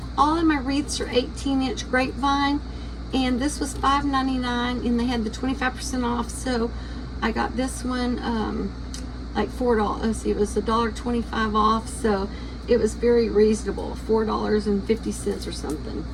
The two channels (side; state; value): both; identical; correlation 1.00